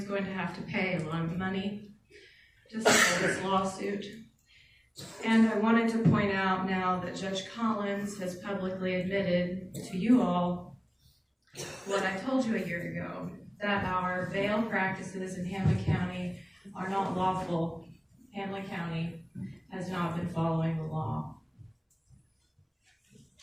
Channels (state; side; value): identical; both; correlation 1.00